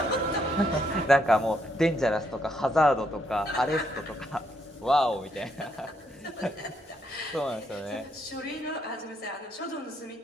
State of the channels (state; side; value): normal; both; correlation 0.75